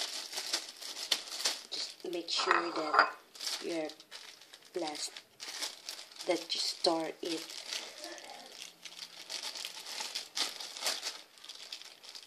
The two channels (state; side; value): identical; both; correlation 1.00